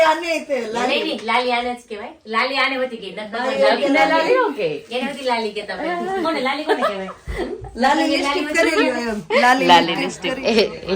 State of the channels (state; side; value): identical; both; correlation 1.00